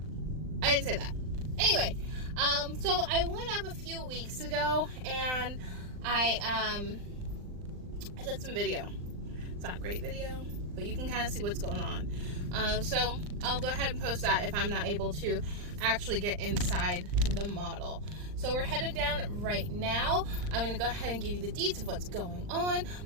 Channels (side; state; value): left; late; 39 ms